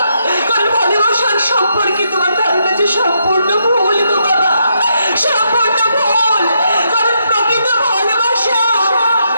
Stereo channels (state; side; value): inverted; both; correlation -0.78